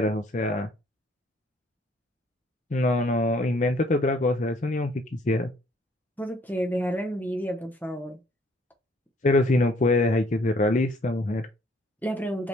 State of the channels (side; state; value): both; normal; correlation 0.61